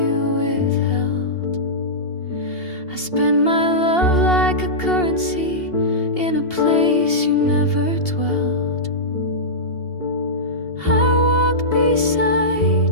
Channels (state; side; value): late; right; 2.8 ms